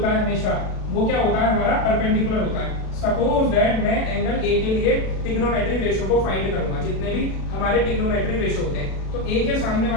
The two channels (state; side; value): late; right; 36 ms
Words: है हमेशा वो क्या होता है हमारा परपेंडिकुलर होता है। सपोज दैट मैं एंगल ए के लिए ट्रिग्नोमेट्री रेशियो को फाइंड करूंगा, जितने भी हमारे ट्रिग्नोमेट्री रेशियो होते हैं तो ए के सामने